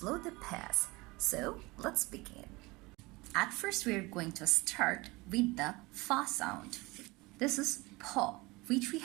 the pace. So let's begin. At first, we are going to start with the fa sound. This is po, which we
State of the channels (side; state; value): left; quieter; 23.3 dB